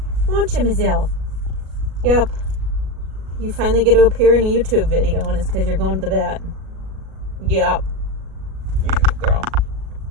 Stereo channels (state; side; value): late; left; 37 ms